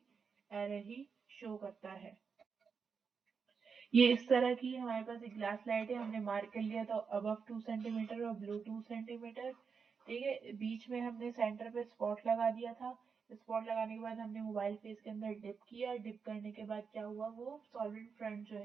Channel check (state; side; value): quieter; left; 5.7 dB